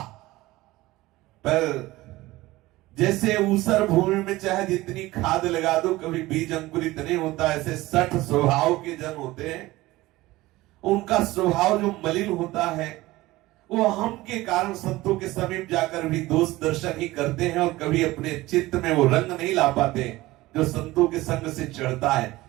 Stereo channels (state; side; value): quieter; left; 18.6 dB